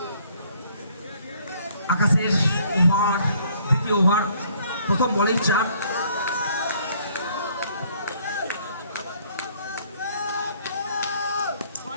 আকাশের ওভার, দ্বিতীয় ওভার, প্রথম বলেই 4।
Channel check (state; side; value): inverted; both; correlation -0.62